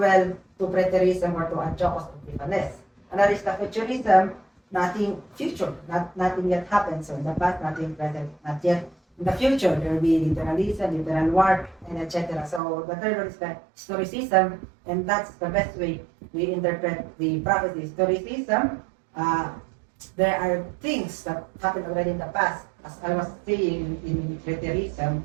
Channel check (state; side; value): drops out; left; at 12.6 s